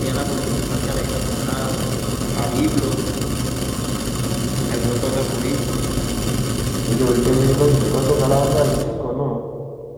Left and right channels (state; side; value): identical; both; correlation 1.00